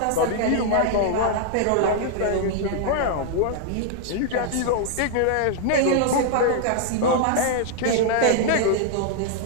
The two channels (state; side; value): different; both; correlation 0.00